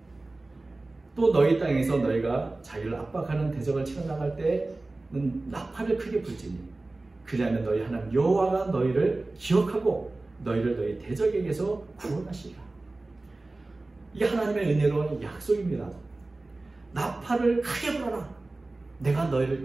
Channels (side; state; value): left; quieter; 3.1 dB